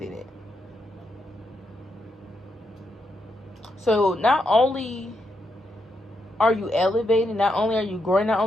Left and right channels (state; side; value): normal; both; correlation 0.81